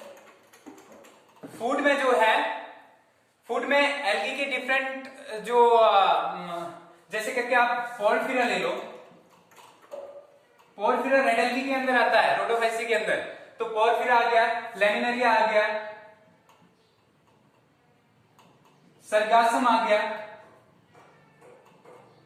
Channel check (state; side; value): identical; both; correlation 1.00